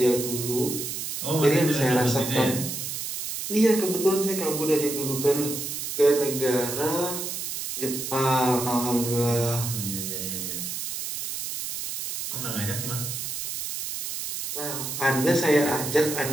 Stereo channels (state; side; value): noise; right; hiss, 5 dB below the sound